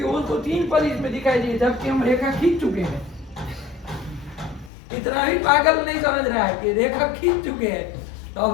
उसको 3 पद इसमें दिखाई दिए, जबकि हम रेखा खींच चुके हैं। इतना भी पागल नहीं समझ रहा है कि रेखा खींच चुके हैं, तो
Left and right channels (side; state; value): right; drops out; at 4.7 s